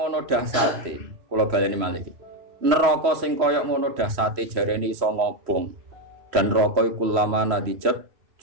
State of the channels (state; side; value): late; left; 3.1 ms